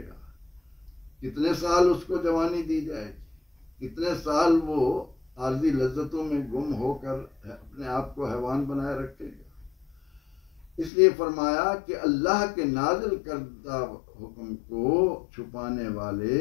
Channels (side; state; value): right; drops out; at 10.9 s